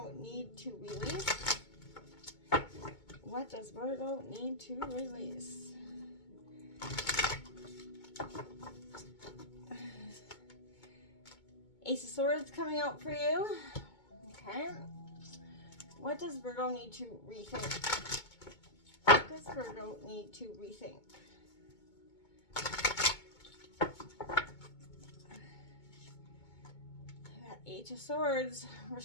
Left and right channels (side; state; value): right; late; 2.2 ms